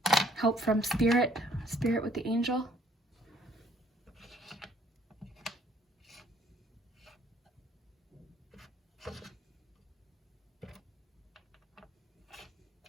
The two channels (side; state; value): both; normal; correlation 0.62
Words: Help from spirit with the angel.